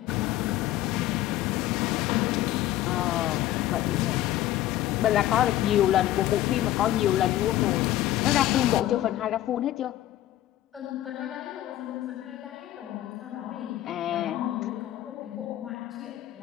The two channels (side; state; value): right; quieter; 13.9 dB